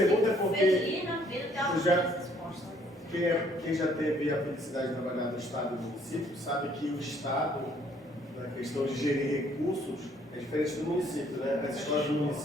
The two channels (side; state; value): both; normal; correlation 0.63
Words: porque Felina, vida, tem uma resposta. quem já teve a felicidade de trabalhar no Estado e no município sabe que o Estado, na questão de gerir recursos, é diferente do município, né? As escolas do